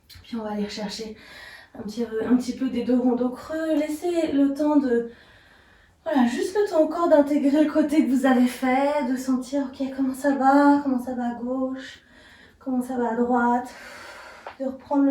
Puis on va aller chercher un petit peu des dos ronds creux. Laissez le temps de... Voilà, juste le temps encore d'intégrer le côté que vous avez fait, de sentir, ok, comment ça va à gauche, comment ça va à droite, de reprendre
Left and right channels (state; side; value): identical; both; correlation 1.00